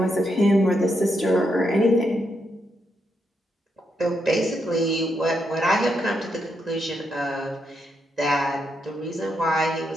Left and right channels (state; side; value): normal; both; correlation 0.81